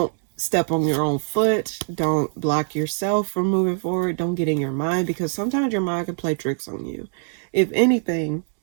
step on your own foot. Don't block yourself from moving forward. Don't get in your mind, because sometimes your mind can play tricks on you. If anything,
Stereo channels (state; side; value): silent; left; digital silence